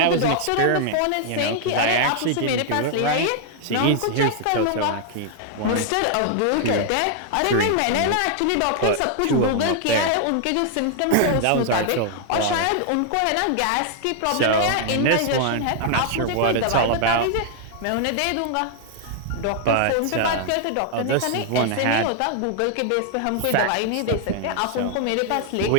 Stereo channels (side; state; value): both; different; correlation 0.00